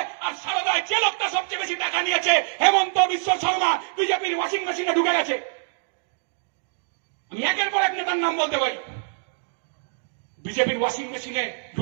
আর সারদায় যে লোকটা সবচেয়ে বেশি টাকা নিয়েছে হেমন্ত বিশ্ব শর্মা বিজেপির ওয়াশিং মেশিনে ঢুকে গেছে। আমি একের পর এক নেতার নাম বলতে পারি। বিজেপির ওয়াশিং মেশিনে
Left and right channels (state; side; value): silent; left; digital silence